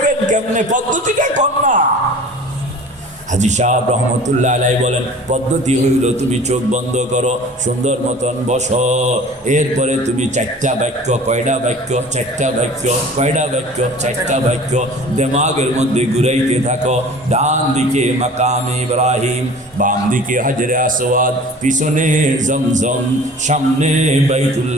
কেমনে পদ্ধতিটা কোন না? হাজী সাহেব রহমতুল্লাহ আলাইহি বলেন, পদ্ধতি হইল তুমি চোখ বন্ধ করো, সুন্দর মতন বসো, এরপরে তুমি 4টা বাক্য, কয়টা বাক্য? 4টা বাক্য, কয়টা বাক্য? 4টা বাক্য দিমাগের মধ্যে ঘুরাইতে থাকো। ডান দিকে মাকামে ইব্রাহিম, বাম দিকে হাজরে আসওয়াদ, পিছনে জমজম, সামনে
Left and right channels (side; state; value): both; normal; correlation 0.44